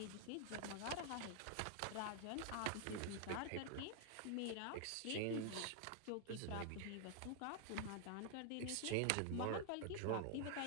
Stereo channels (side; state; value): both; different; correlation 0.00